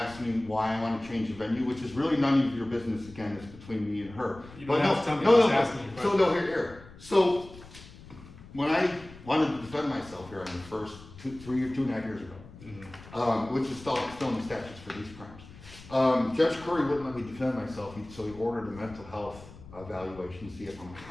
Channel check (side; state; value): left; noise; rumble, 18 dB below the sound